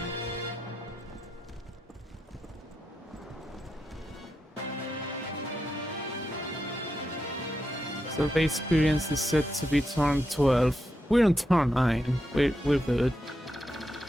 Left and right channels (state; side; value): normal; both; correlation 0.86